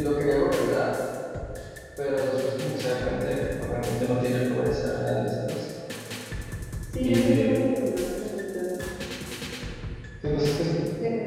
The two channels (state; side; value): identical; both; correlation 1.00